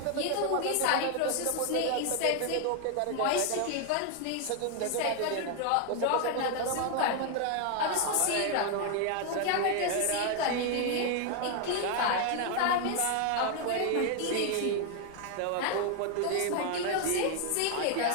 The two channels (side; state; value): both; different; correlation 0.01